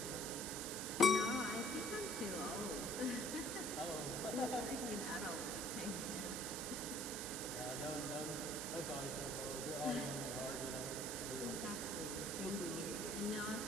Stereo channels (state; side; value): noise; right; hiss, 3 dB below the sound